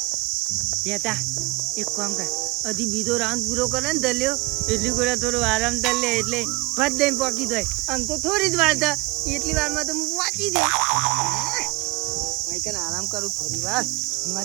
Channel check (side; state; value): left; quieter; 22.7 dB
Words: તેતા એક કામ કર હજી બીજો રાઉન્ડ પૂરો કરે ને દલ્યો એટલી ગોળા થોડો આરામ કર લે એટલે ફટ દઈને પોકી જાય. આમ તો થોડી જ વાર થા એટલી વારમાં તો હું વાંચી દે ભાઈ કને આરામ કરું થોડી વાર